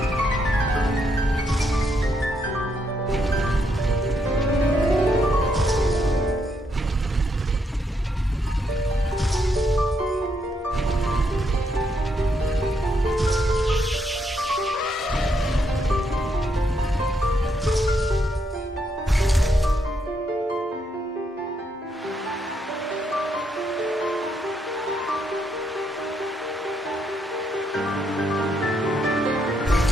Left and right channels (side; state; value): both; normal; correlation 0.76